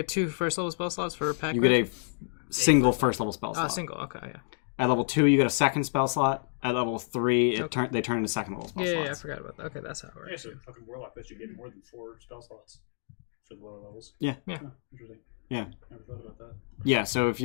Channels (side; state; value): right; silent; digital silence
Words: 2 first level spell slots for pack. You get a single first level spell Oh, slot. single. Okay, yeah. At level 2, you get a second spell slot. At level 3, they turn into second level spell Yeah, I slots. forgot about that. Okay, that's how it works. Yeah, so fucking warlock lets you get more than 4 spell slots for the lower levels. Yeah. Yeah. Huh, interesting. Yeah. Never thought about that. Yeah, so if